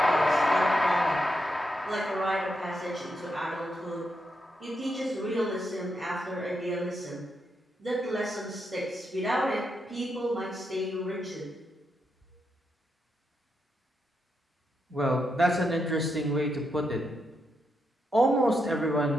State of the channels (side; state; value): both; normal; correlation 0.83